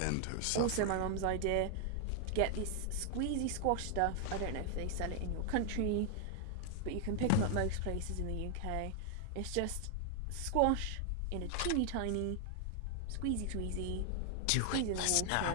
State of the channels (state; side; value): different; both; correlation 0.00